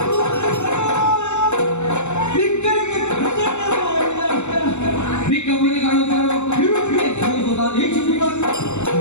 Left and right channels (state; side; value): late; right; 0.83 ms